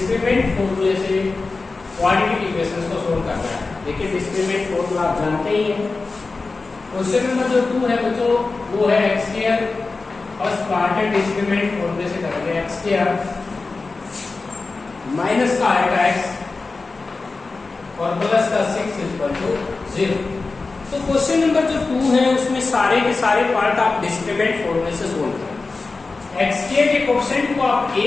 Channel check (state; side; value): quieter; right; 3.9 dB